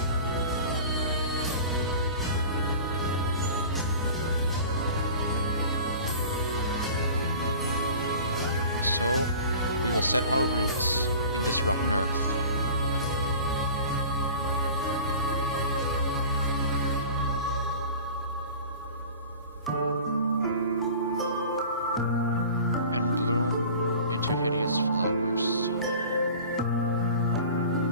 So, we will set our roots in this rotten earth. And bloom into hideous flowers.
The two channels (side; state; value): both; inverted; correlation -0.40